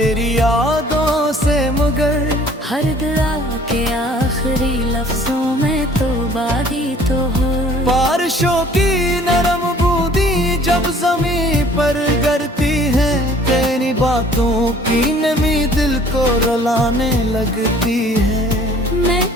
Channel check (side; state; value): both; normal; correlation 0.54